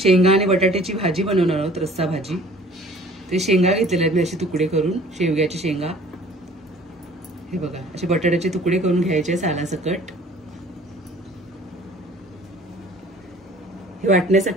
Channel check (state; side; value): normal; both; correlation 0.51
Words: आणि बटाट्याची भाजी बनवणार आहोत, रस्सा भाजी। ते शेंगा घेतलेले आहेत मी असे तुकडे करून, शेवग्याची शेंगा। हे बघा, असे बटाट्याचे तुकडे करून घ्यायचे सालासकट। हे